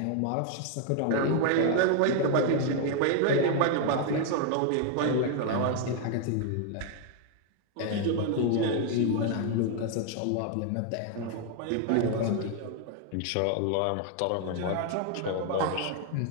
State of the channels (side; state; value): both; different; correlation 0.00